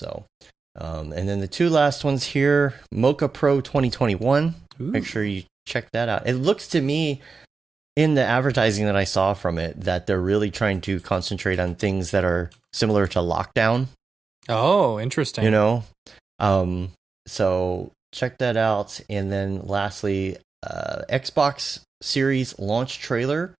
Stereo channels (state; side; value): quieter; left; 4.6 dB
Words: and then the 2 last ones here, Mocha Pro 2021. Ooh. Make sure you check that out. It looks to me, in the advertising that I saw from it, that they're really trying to concentrate on things that are similar to Lockdown. Oh, interesting. So check that out. And then lastly, Xbox Series launch trailer.